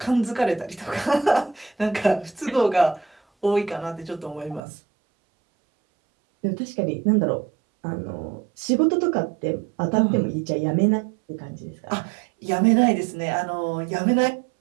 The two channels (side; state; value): left; drops out; at 4.6 s